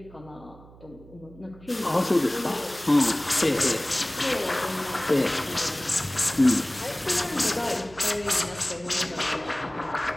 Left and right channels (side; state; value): right; noise; hum, 22 dB below the sound